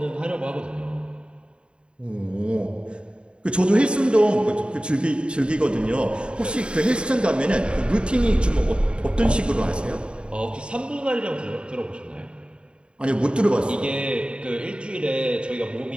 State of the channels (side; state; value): left; late; 0.053 ms